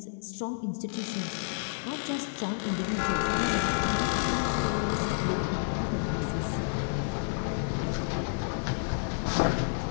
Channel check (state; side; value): silent; right; digital silence